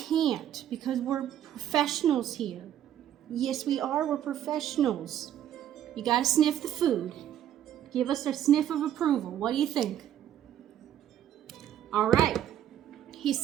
because we're professionals here. Yes, we are. We're professionals. You gotta sniff the food. Give us a sniff of approval. What do you think? All right. He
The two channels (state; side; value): quieter; left; 10.9 dB